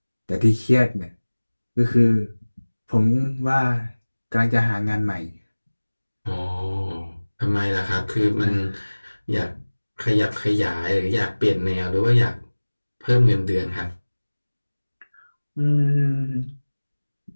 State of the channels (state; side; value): inverted; both; correlation -1.00